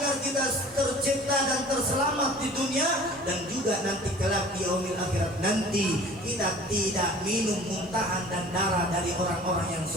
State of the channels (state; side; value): normal; both; correlation 0.46